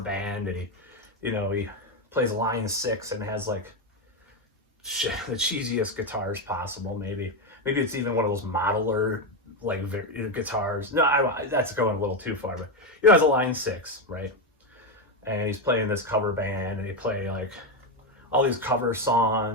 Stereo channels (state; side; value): normal; both; correlation 0.09